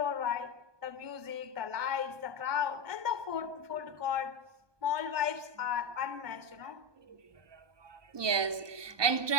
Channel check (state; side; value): late; left; 1.2 ms